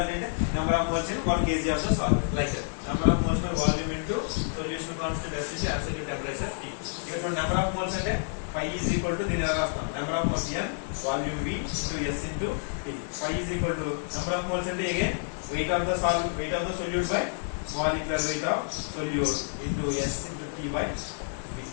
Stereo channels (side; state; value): right; silent; 59 dB below the other